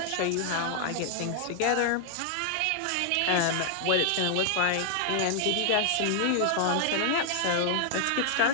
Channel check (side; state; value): both; different; correlation 0.00